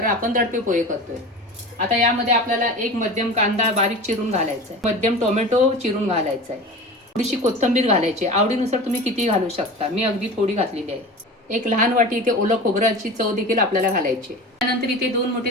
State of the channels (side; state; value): both; normal; correlation 0.33